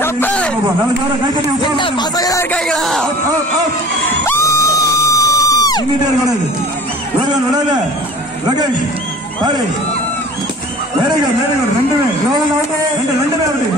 கப்பே பசங்க இருக்காங்களா? இங்கிட்டே கூடாது. ஒருவன் விடாத லோகேஷ் பாரு. Very good very good. ரெண்டுமே லோகன் அவுட். ரெண்டுமே அவுட்.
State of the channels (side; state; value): both; normal; correlation 0.43